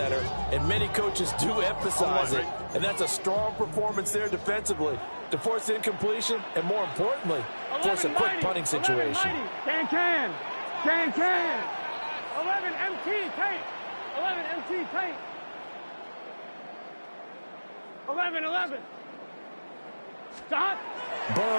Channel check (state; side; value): inverted; both; correlation -1.00